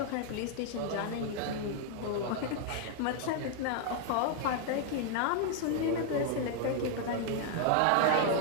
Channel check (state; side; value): different; both; correlation 0.00